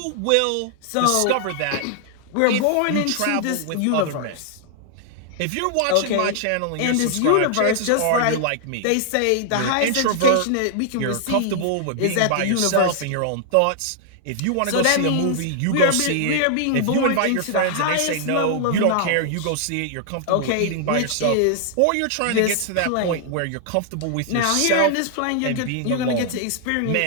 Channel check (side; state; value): both; different; correlation -0.01